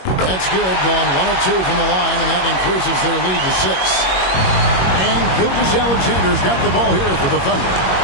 That's good, going 1 of 2 from the line, and that increases their lead to 6. And Gilgeous-Alexander's got the ball here for the Thunder.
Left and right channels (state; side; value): late; right; 21 ms